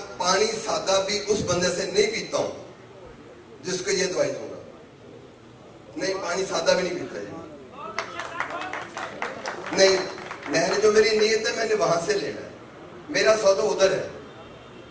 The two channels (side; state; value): both; identical; correlation 1.00